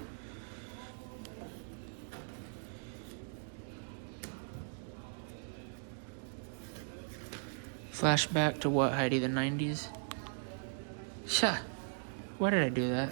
Flashback to what, Heidi? The 90s? Why did I do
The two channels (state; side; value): silent; left; digital silence